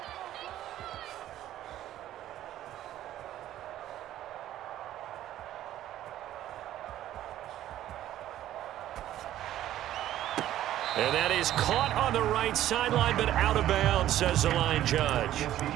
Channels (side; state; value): left; quieter; 12.9 dB